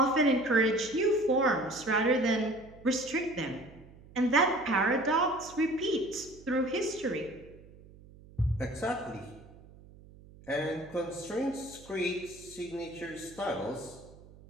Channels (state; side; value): noise; right; hum, 22 dB below the sound